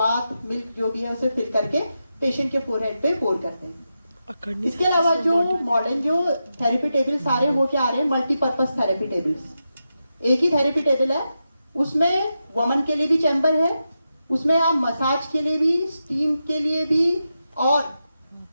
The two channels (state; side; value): inverted; both; correlation -0.88